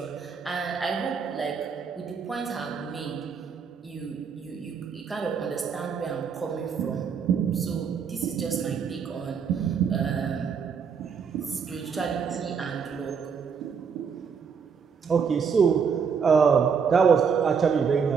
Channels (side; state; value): left; quieter; 6.3 dB